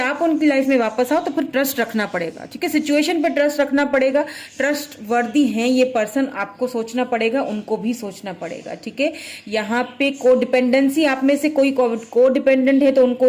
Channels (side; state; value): both; identical; correlation 1.00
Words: उनकी लाइफ में वापस आओ, तो फिर ट्रस्ट रखना पड़ेगा, ठीक है। सिचुएशन पे ट्रस्ट रखना पड़ेगा, ट्रस्ट वर्दी हैं ये पर्सन, आपको सोचना पड़ेगा, उनको भी सोचना पड़ेगा, ठीक है। यहाँ पे को डिपेंडेंसी, आप में से कोई को डिपेंडेंट है तो उनको